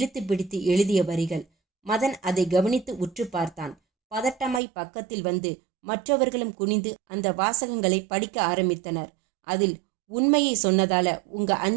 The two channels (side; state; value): left; drops out; at 4.6 s